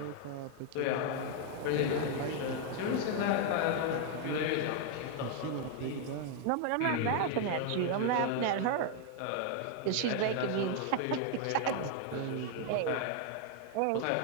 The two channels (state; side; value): different; both; correlation 0.00